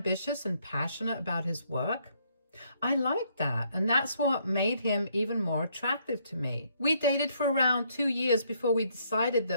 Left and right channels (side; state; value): both; inverted; correlation -0.69